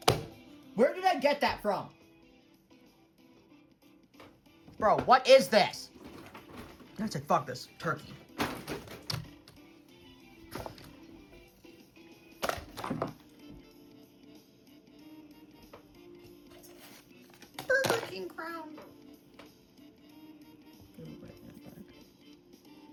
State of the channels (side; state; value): both; identical; correlation 1.00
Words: Where did I get that from? Bro, what is this? I said, fuck this. Turkey. Burger King crown.